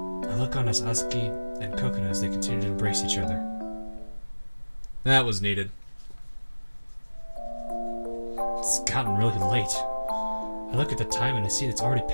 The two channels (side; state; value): both; inverted; correlation -1.00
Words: I look on as Asuki and Coconut as they continue to embrace each other. That was needed. It's gotten really late. I look at the time and I see it's already